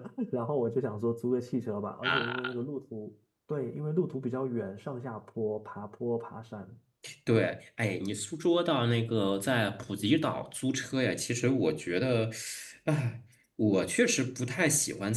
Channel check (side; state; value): both; identical; correlation 1.00